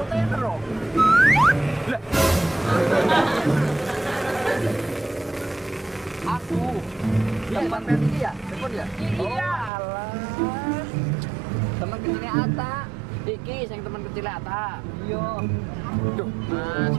loh. Lah, Aku. Tempat ini ya? Telepon ya? iya. Alah. Teman kecilnya Ata. Iki sing teman kecilnya Ata. Iya. Duh, Mas.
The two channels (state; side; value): drops out; left; at 9.7 s